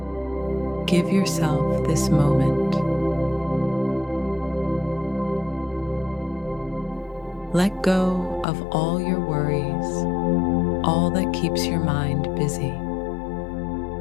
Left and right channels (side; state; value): right; drops out; at 8.5 s